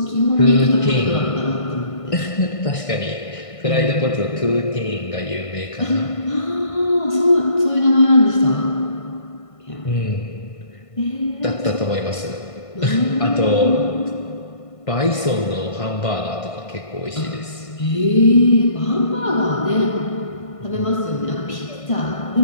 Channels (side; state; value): right; late; 1.5 ms